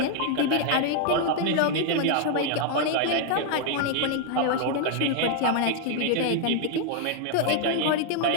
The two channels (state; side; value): different; both; correlation 0.00